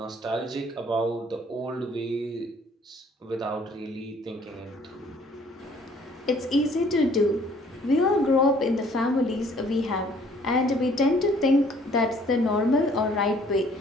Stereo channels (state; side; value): normal; both; correlation 0.58